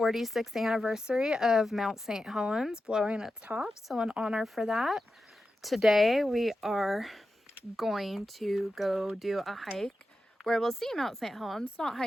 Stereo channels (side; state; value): both; normal; correlation 0.91